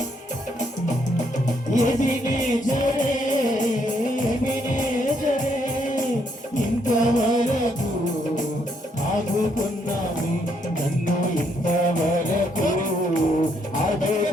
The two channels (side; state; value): both; normal; correlation 0.73